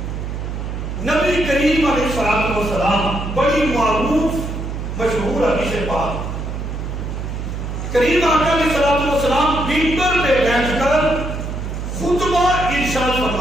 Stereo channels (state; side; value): noise; right; hum, 5 dB below the sound